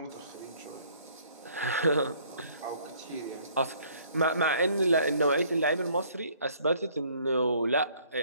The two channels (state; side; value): inverted; both; correlation -0.60